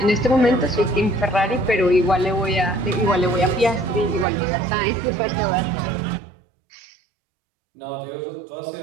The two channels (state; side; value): drops out; left; at 4.2 s